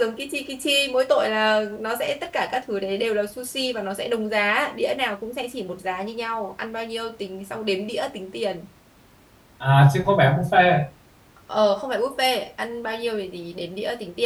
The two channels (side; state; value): both; identical; correlation 1.00